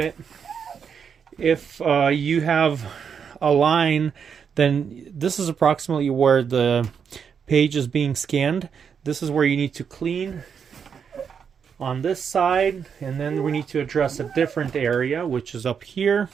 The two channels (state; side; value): quieter; left; 6.9 dB